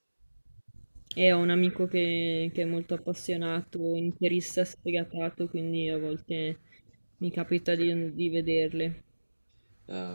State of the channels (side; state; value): both; inverted; correlation -1.00